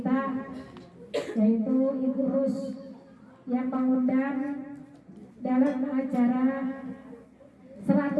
yaitu Ibu Rus yang mengundang dalam acara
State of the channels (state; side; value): identical; both; correlation 1.00